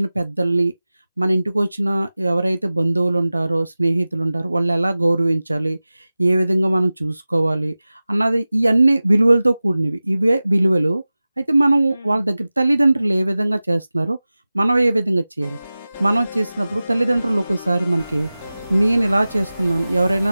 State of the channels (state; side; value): inverted; both; correlation -0.97